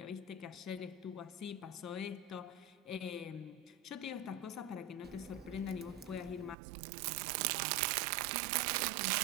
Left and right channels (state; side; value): drops out; left; at 6.6 s